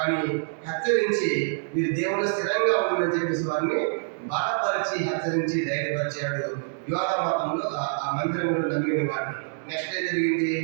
హెచ్చరించి మీరు దేవుడు స్థిరంగా ఉందని చెప్పేసి వారిని బలపరిచి హెచ్చరించి ధైర్యపరిచాడు. యోధా మతంలో ఆ మందిరంలో నమ్మిన వారిని. నెక్స్ట్ ఏం జరిగింది?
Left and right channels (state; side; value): silent; left; digital silence